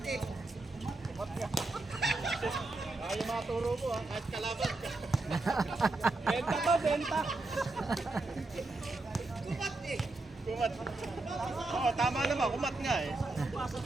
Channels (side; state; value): left; quieter; 3.1 dB